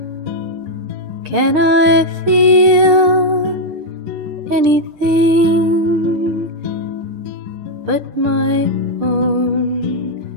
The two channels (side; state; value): left; late; 6.6 ms